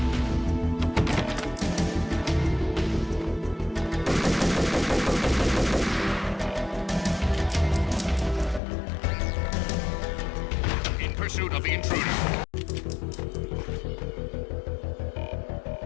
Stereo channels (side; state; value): right; drops out; at 8.6 s